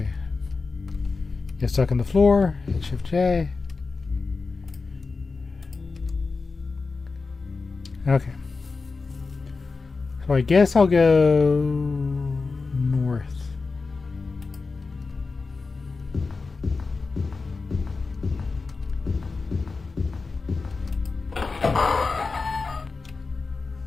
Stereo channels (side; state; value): right; quieter; 4.2 dB